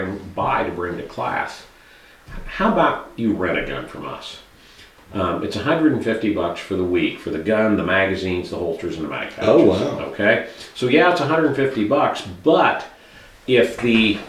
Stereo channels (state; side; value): identical; both; correlation 1.00